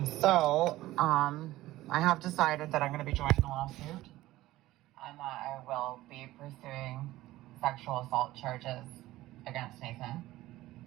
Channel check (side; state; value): left; quieter; 16.6 dB